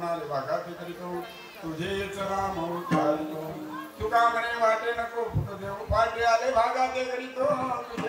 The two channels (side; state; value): both; identical; correlation 1.00